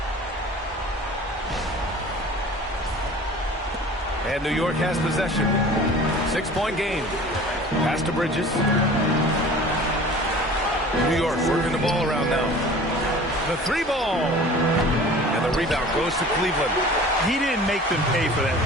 And New York has possession. 6-point game. Pass to Bridges. New York working the ball around now. The 3-ball. And the rebound goes to Cleveland. He didn't make them pay for that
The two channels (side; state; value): both; normal; correlation 0.43